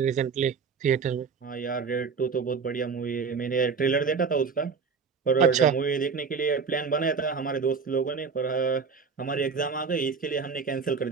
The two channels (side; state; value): left; quieter; 5.5 dB